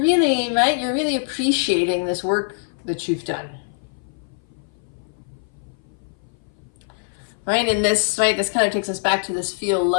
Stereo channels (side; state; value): right; silent; 59 dB below the other